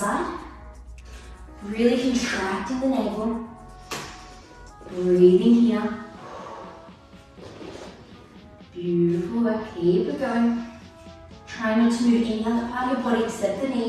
Really contracting the navel. Breathing here. Beautiful work, keep it going. Try not to move any other part of your body except the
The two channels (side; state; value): both; identical; correlation 1.00